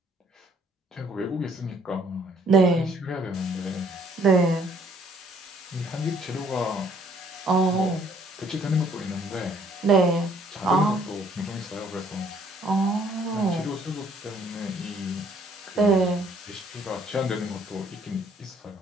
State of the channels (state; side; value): normal; both; correlation 0.62